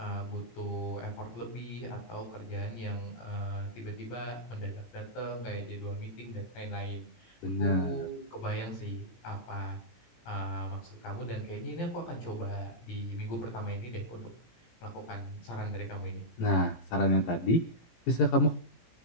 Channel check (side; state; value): right; late; 17 ms